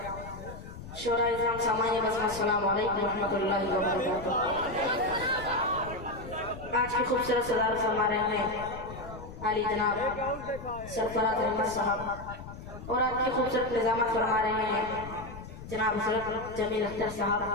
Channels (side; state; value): left; noise; rumble, 13 dB below the sound